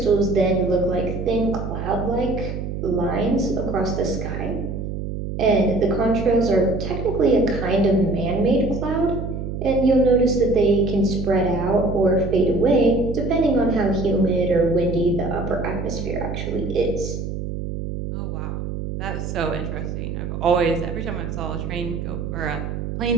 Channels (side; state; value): right; noise; hum, 5 dB below the sound